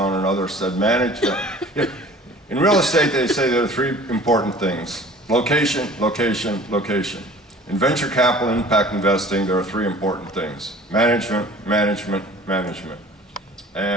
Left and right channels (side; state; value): both; normal; correlation 0.47